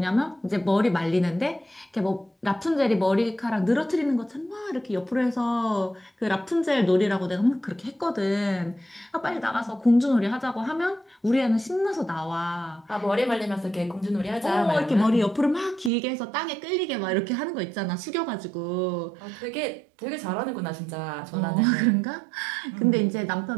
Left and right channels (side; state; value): left; drops out; at 15.9 s